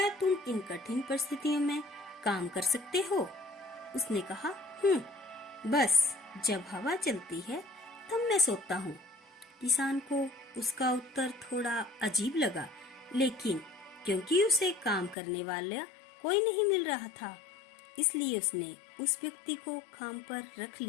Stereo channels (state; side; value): drops out; right; at 15.2 s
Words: तुम इन कठिन परिस्थितियों में काम कर सकते हो? उसने कहा, बस जब हवा चलती है तब मैं सोता हूँ। किसान को उसका उत्तर थोड़ा अजीब लगा, लेकिन क्योंकि उसे काम करने वाला कोई नहीं मिल रहा था, इसलिए उसने उस व्यक्ति को काम पर रख